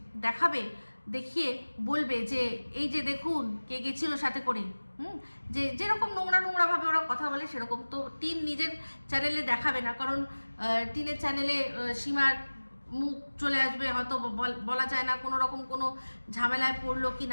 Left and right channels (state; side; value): inverted; both; correlation -1.00